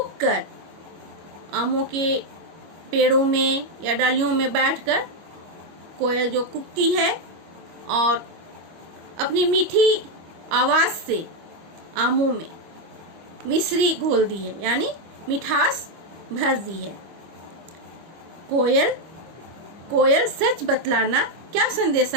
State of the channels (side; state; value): left; late; 25 ms